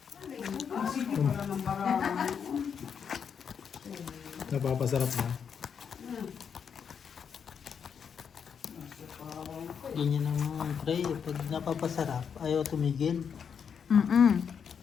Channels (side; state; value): right; quieter; 7.1 dB